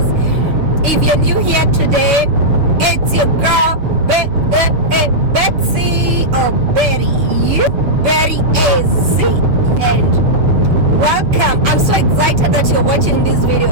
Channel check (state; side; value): late; left; 6.8 ms